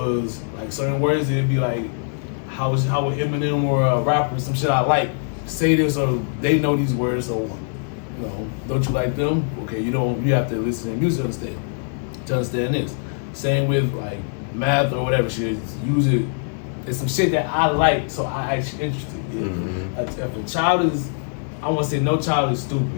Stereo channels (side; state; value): right; silent; digital silence